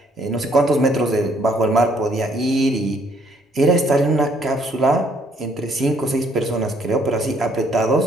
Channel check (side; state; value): both; normal; correlation 0.66